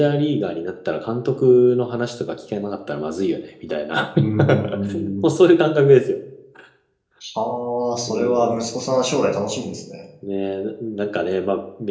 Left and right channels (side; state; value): both; identical; correlation 1.00